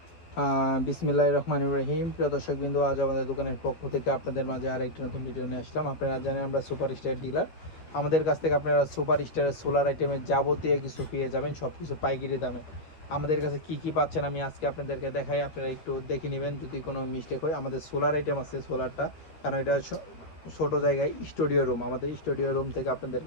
বিসমিল্লাহির রহমানির রহিম। প্রিয় দর্শকবৃন্দ, আজ আমাদের দোকানের পক্ষ থেকে আপনাদের মাঝে আরেকটি নতুন ভিডিও নিয়ে আসলাম। আপনারা জানেন আমরা সুপার স্টার ডিলার। আমাদের কাছ থেকে আপনারা সুপার স্টারের সোলার আইটেমের যাবতীয় কিছু পেয়ে যাবেন, সব কিছু পাইকারি দামে। আমাদের কাছে কি কি পাচ্ছেন আমি আজকে আপনাদেরকে দেখাই, আপনারা একটু দেখে নেবেন। যদি কোনো মিস্টেক হয়, আমাদের সোলার আইটেম আছে সোলারটা, কারণ এটা ছোট জায়গায় স্টুডিও রুম, আমাদের স্টুডিও রুম থেকে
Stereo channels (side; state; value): right; late; 12 ms